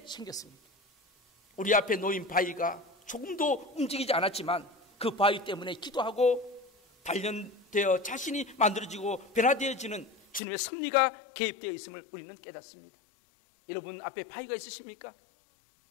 생겼습니다. 우리 앞에 놓인 바위가 조금도 움직이지 않았지만 그 바위 때문에 기도하고 단련되어 자신이 만들어지고 변화되어지는 주님의 섭리가 개입되어 있음을 우리는 깨닫습니다. 여러분 앞에 바위가 있으십니까?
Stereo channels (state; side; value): drops out; right; at 10.4 s